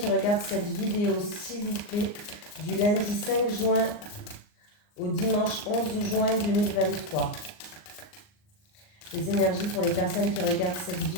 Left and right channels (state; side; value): late; right; 39 ms